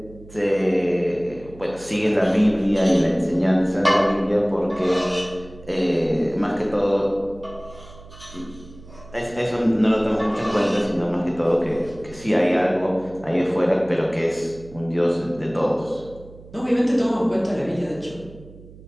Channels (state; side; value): noise; right; hum, 20 dB below the sound